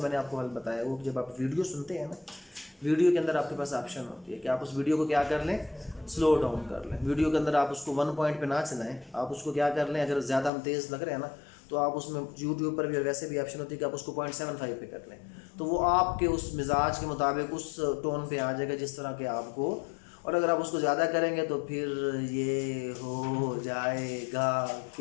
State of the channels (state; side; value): drops out; right; at 10.5 s